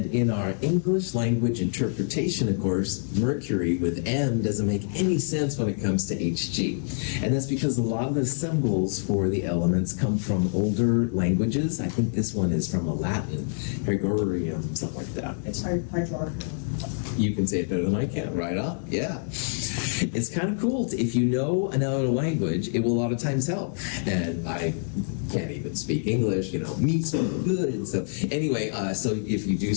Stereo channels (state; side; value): silent; right; digital silence